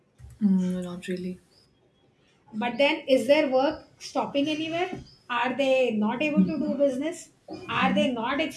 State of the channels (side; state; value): both; identical; correlation 1.00